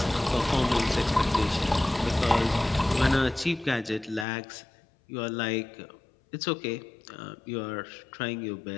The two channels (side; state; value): right; drops out; at 4.2 s